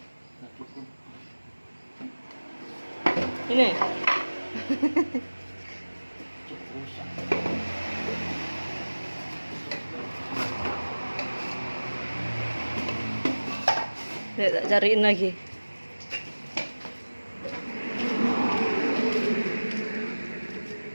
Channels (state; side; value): inverted; both; correlation -1.00